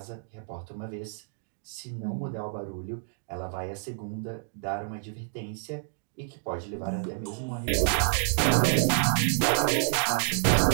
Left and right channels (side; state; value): left; silent; digital silence